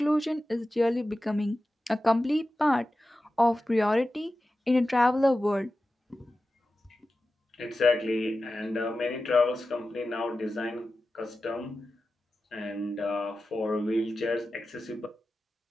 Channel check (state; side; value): normal; both; correlation 0.93